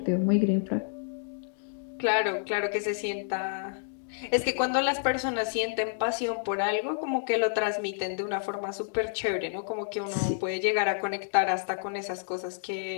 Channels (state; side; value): silent; right; digital silence